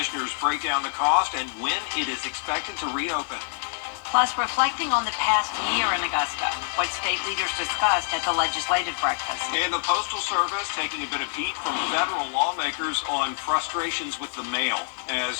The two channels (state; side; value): silent; right; digital silence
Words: break down the cost and when it is expected to reopen. Plus, reflecting on the past year in Augusta, what state leaders discussed at the legislative breakfast. And the Postal Service taking a bit of heat from federal lawmakers on frustrations with the mail.